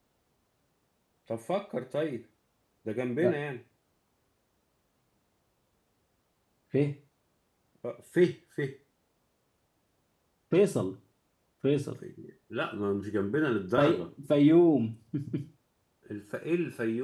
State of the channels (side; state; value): both; identical; correlation 1.00